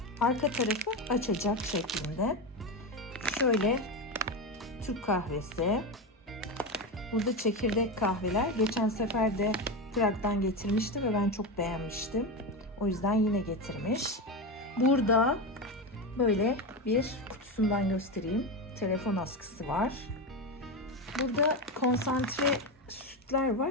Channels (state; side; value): normal; both; correlation 0.16